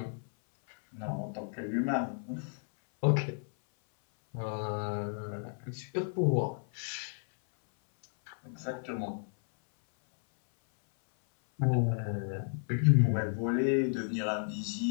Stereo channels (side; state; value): right; silent; 56 dB below the other